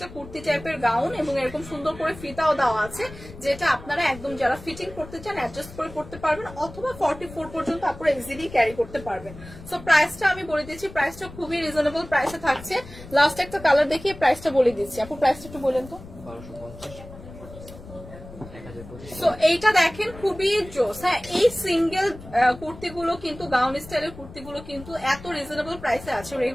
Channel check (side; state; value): left; noise; rumble, 16 dB below the sound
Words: কুর্তি টাইপের গাউন, এবং এরকম সুন্দর করে ফিতাও দেওয়া আছে, যেটা আপনারা একদম যারা ফিটিং করতে চান অ্যাডজাস্ট করে করতে পারবেন, অথবা 44 পর্যন্ত আপনারা ইজিলি ক্যারি করতে পারবেন। সো প্রাইসটা আমি বলে দিচ্ছি, প্রাইসটা খুবই রিজনেবল প্রাইসে থাকছে। লাস্ট একটা কালার দেখিয়ে প্রাইসটা বলে দিচ্ছি। আপু প্রাইসটা একটু বলেন তো। সো এইটা দেখেন, খুবই জোস। হ্যাঁ, এই সিঙ্গেল কুর্তিগুলো কিন্তু, গাউন স্টাইলের কুর্তিগুলো কিন্তু এত রিজনেবল প্রাইসে আছে,